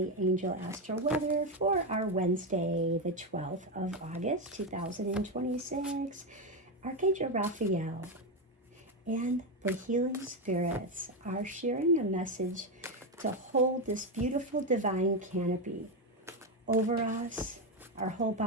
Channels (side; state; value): both; normal; correlation 0.09